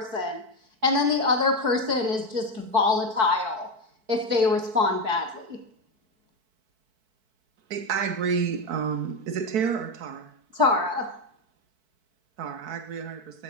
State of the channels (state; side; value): late; left; 4.6 ms